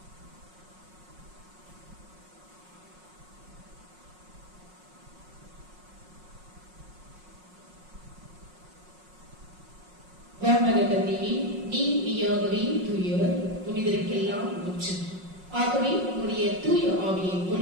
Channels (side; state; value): left; late; 5.5 ms